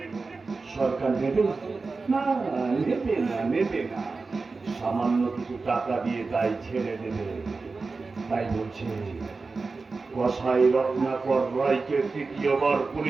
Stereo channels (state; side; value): quieter; left; 4.1 dB